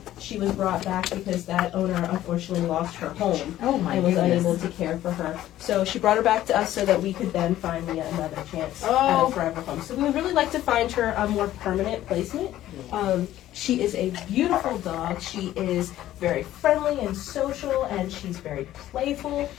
she was brought back because that owner unfortunately lost her home and was unable to care for her. So she brought her back to us so that we could then find Leah another chance at a forever home. So we would really like to find her a more permanent placement. She is a beautiful dog. She is very friendly and social, and she's very playful.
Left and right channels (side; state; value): right; quieter; 13.6 dB